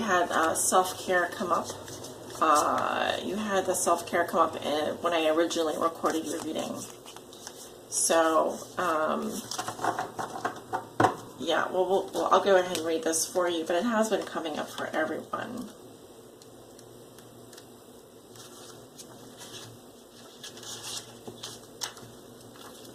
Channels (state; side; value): identical; both; correlation 1.00